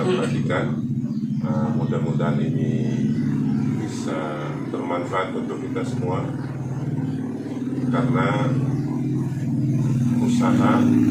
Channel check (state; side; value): identical; both; correlation 1.00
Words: perhatikan. Mudah-mudahan ini bisa bermanfaat untuk kita semua, karena usaha